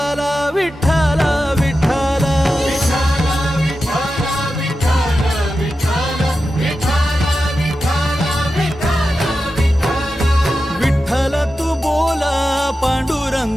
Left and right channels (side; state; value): both; normal; correlation 0.91